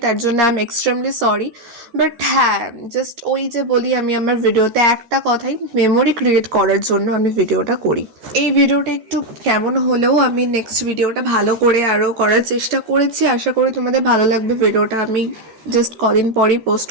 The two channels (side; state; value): left; late; 14 ms